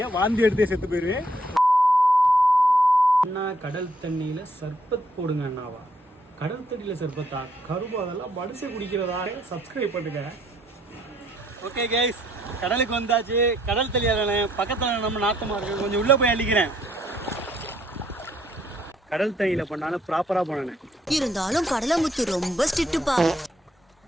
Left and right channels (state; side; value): normal; both; correlation 0.69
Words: வாந்தி எடுத்தே செத்து போயிருவேன். அண்ணா கடல் தண்ணியில சர்பத் போடுங்க அண்ணாவா? கடல் தண்ணியில சர்பத்தா? கரும்பு அதெல்லாம் மனுஷன் குடிக்கிறதா? சப்ஸ்கிரைப் பண்ணுங்க. ஓகே கைஸ், கடலுக்கு வந்தாச்சு. கடல் தண்ணியாதானே பக்கத்தில் நம்ம நாத்தமா இருக்கு, கொஞ்சம் உள்ள போய் அள்ளிக்கிறேன். கடல் தண்ணியில பண்ணாலும் ப்ராப்பரா பண்ணேன். இருந்தாலும் கடலமுத்து ரொம்ப ஸ்ட்ரிக்ட்டுப்பா.